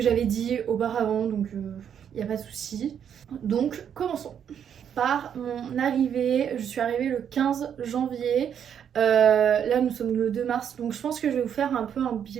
j'avais dit auparavant, donc il n'y a pas de souci. Donc commençons par mon arrivée. Je suis arrivée le 15 janvier. Là nous sommes le 2 mars, donc je pense que je vais vous faire un peu un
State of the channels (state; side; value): quieter; left; 8.5 dB